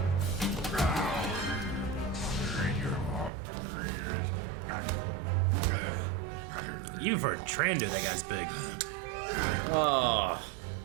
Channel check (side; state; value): left; drops out; at 3.3 s